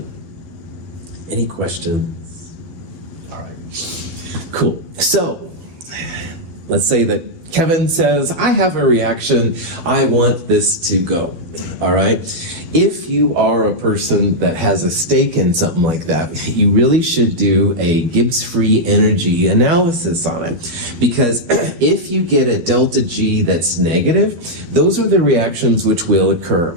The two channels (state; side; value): late; left; 12 ms